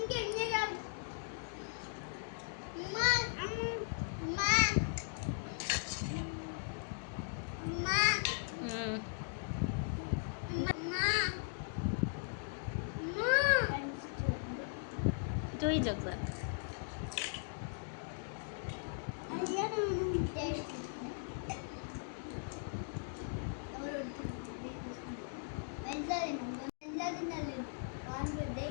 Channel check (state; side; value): silent; right; digital silence